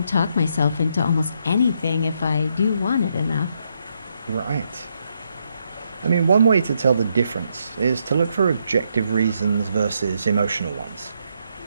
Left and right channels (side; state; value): both; inverted; correlation -0.77